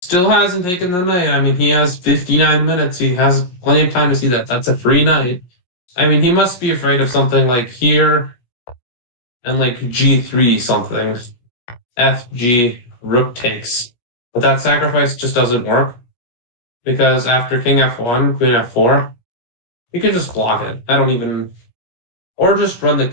Still hasn't taken the knight. I mean, he has 59 minutes. He has plenty of time to see that. That's a free knight. I mean, he must be afraid of something like here and like g3 something. FG, rook takes. But that sacrifice just doesn't work because after king f1, queen f4, you can just block it. I don't even, or just run the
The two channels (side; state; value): right; late; 17 ms